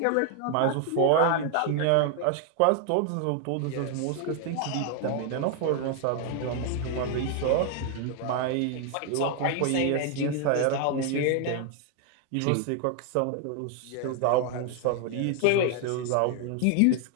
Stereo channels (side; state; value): both; different; correlation 0.00